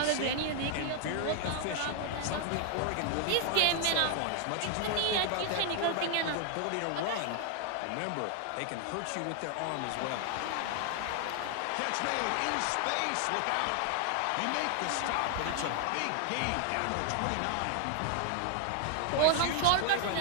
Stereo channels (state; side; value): different; both; correlation 0.00